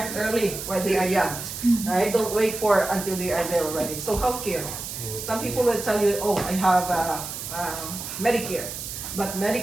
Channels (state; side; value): noise; right; hiss, 8 dB below the sound